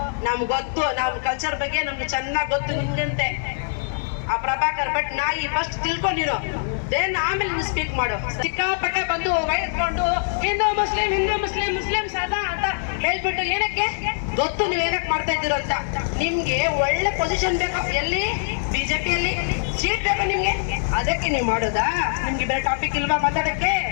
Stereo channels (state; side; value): silent; right; digital silence